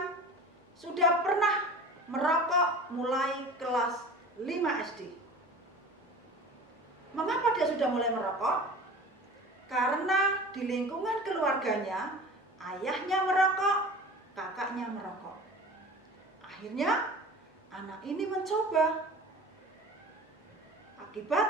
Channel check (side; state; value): both; normal; correlation 0.39